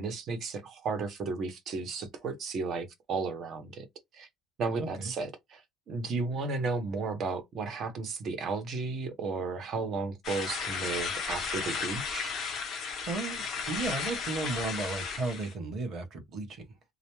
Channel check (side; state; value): both; normal; correlation 0.57